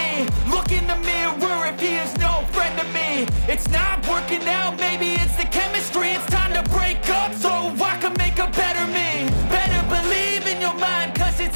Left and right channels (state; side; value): inverted; both; correlation -1.00